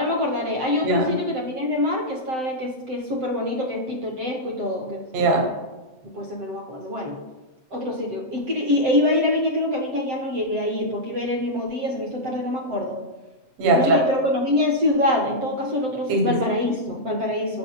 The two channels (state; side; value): late; left; 7.7 ms